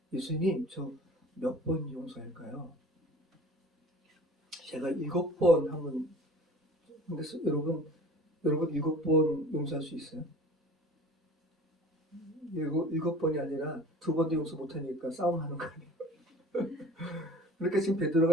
예수님 저 몇 번 용서할까요? 제가 7번 하면 근데 여러분 7번 용서할 수 있어요? 7번이 아니라 2번도 용서 못하니까 싸움하는 거예요. 그러니까 지금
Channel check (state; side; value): normal; both; correlation 0.46